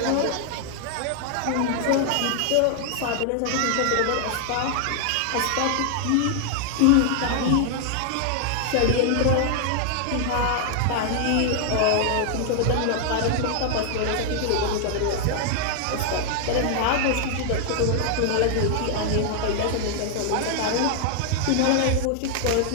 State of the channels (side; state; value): both; different; correlation 0.00